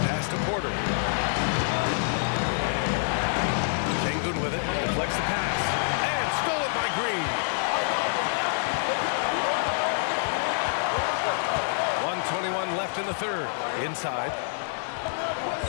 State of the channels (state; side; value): silent; right; digital silence